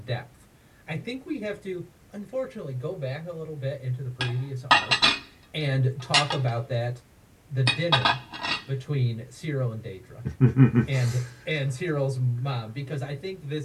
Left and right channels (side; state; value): both; identical; correlation 1.00